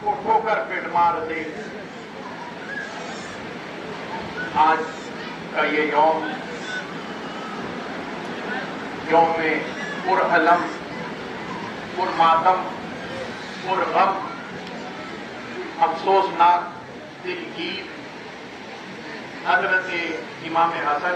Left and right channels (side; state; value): both; identical; correlation 1.00